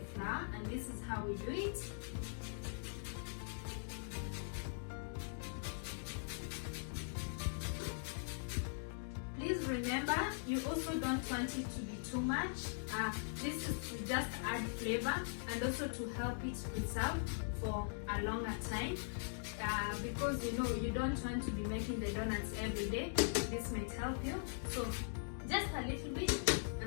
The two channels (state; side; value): silent; right; digital silence